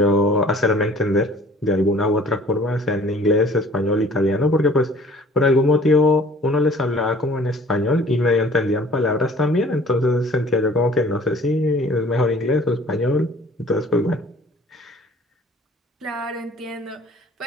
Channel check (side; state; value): both; normal; correlation 0.52